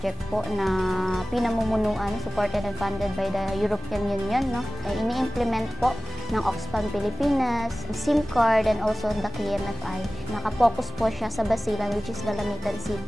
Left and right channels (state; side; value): normal; both; correlation 0.96